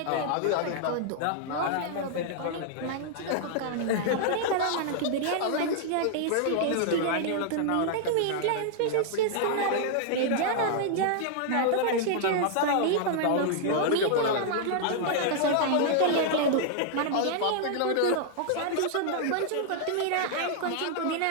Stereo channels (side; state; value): both; different; correlation -0.01